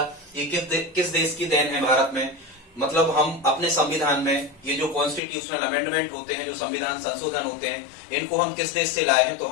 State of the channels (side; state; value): right; drops out; at 5.2 s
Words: ये किस देश की देन है। भारत में मतलब हम अपने संविधान में ये जो कॉन्स्टिट्यूशनल अमेंडमेंट होते हैं, जो संविधान संशोधन होते हैं, इनको हम किस देश से लाए हैं। तो